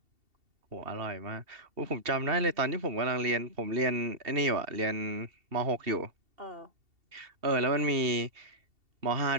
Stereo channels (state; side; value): late; left; 2.7 ms